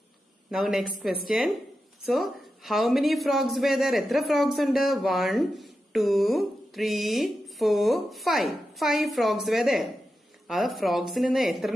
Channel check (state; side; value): normal; both; correlation 0.90